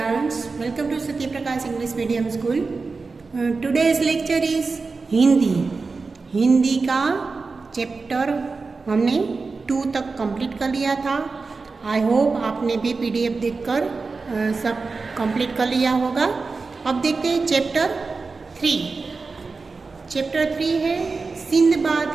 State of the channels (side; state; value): left; quieter; 4.2 dB